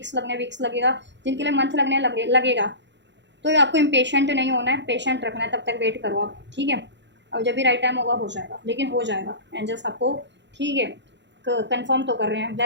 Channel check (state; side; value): late; left; 0.52 ms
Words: लगेगा, जिनके लिए मंथ लगेगा। तो आपको इम्पेशेंट नहीं होना है, पेशेंट रखना है, तब तक वेट करो आप, ठीक है। और जब भी राइट टाइम होगा हो जाएगा, लेकिन हो जाएगा एंजल्स आपको, ठीक है, कंफर्म तो कर रहे हैं,